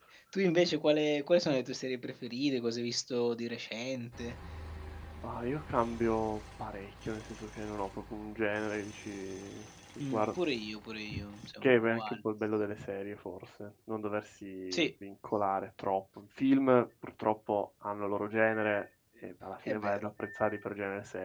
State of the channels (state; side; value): identical; both; correlation 1.00